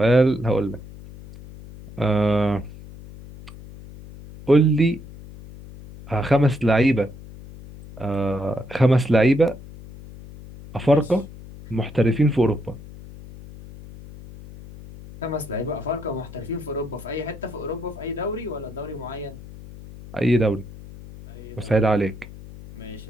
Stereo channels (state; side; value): noise; left; hum, 16 dB below the sound